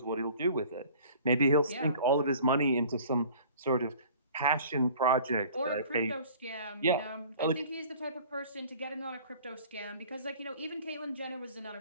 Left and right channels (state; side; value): inverted; both; correlation -0.48